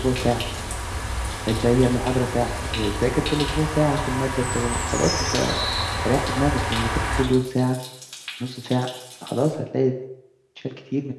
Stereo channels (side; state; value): both; identical; correlation 1.00